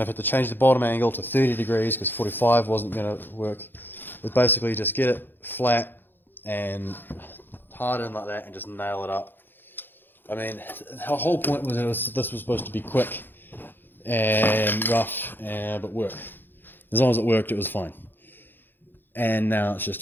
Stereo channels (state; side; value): late; right; 0.096 ms